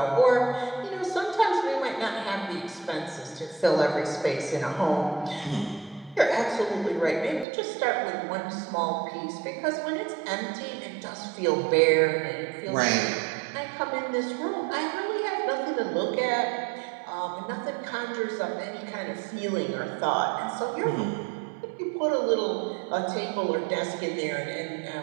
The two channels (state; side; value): drops out; left; at 7.5 s